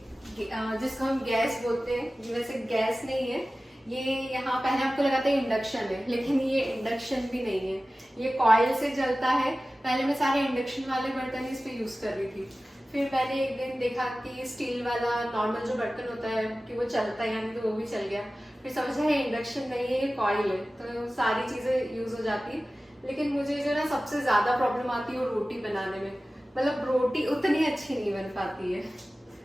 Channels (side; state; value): both; normal; correlation 0.96